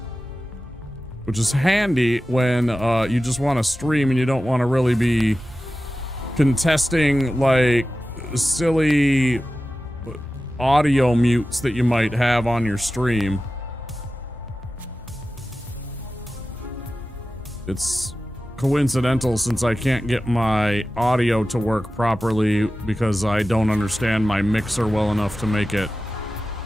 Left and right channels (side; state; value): both; normal; correlation 0.94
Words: Which is handy when you just want to stream and you don't want to really be contesting like silly audio mutes that you might have on your stream. It's coincidental since I can't get my audio to work properly because I don't understand my mixer well enough to make it